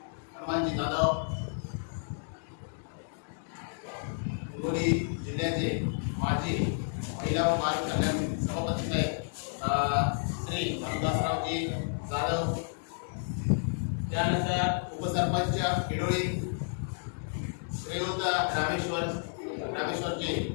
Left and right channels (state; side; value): silent; right; digital silence